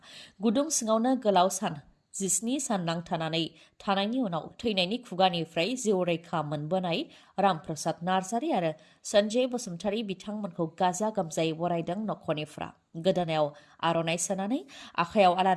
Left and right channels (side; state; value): both; identical; correlation 1.00